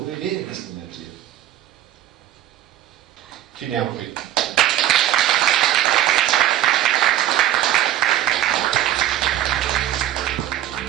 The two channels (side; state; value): left; quieter; 12.5 dB